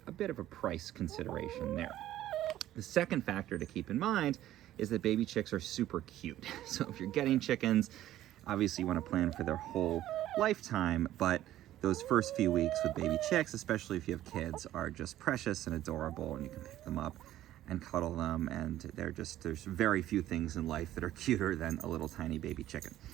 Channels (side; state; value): left; quieter; 13.5 dB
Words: a bit of a price consideration there. The second factor to keep in mind is that baby chicks are super cute. So if you're getting chickens, obviously you want to plan for their whole lifetime, but those first few weeks with baby chicks, especially if you have kids, are just precious and adorable, and you can pick them up and cuddle them, and there's very few things in life that are cuter than a little tiny baby chicken.